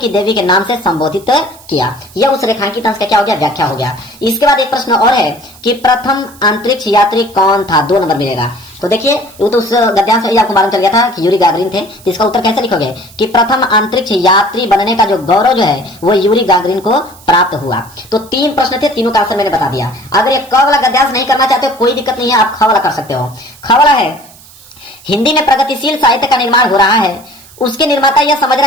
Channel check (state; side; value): noise; right; hiss, 23 dB below the sound